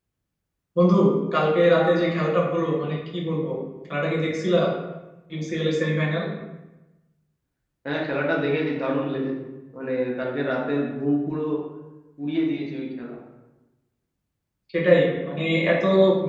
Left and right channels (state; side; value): identical; both; correlation 1.00